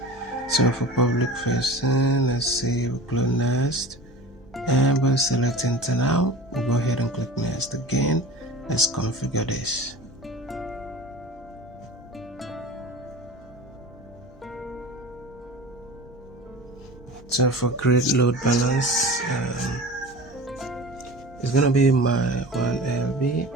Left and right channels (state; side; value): normal; both; correlation 0.36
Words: So for public facing, let's see, we'll click next and we'll select internal. We'll go ahead and click next again. Let's configure this. So for create load balance, it's gonna be my 1LB.